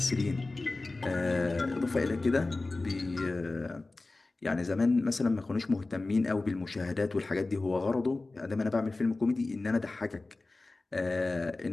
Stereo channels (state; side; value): quieter; right; 3.3 dB